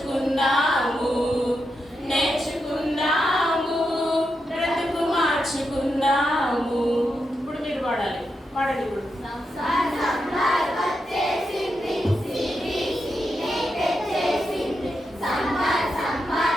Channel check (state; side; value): normal; both; correlation 0.86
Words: నేర్చుకుందాము, బ్రతుకు మార్చుకుందాము. ఇప్పుడు మీరు పాడాలి. పాడండి ఇప్పుడు.